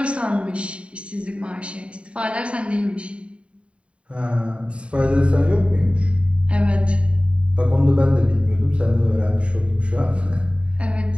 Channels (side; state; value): left; late; 0.060 ms